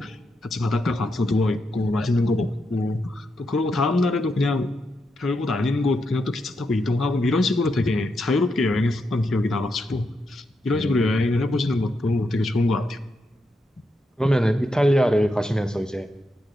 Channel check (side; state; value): both; normal; correlation 0.83